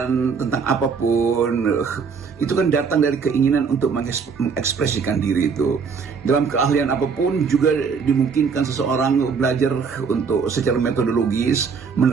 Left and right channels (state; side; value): quieter; left; 5.7 dB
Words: tentang apapun itu kan datang dari keinginan untuk mengekspresikan diri itu. Dalam keahlian apapun juga dimungkinkan seseorang belajar untuk secara metodologis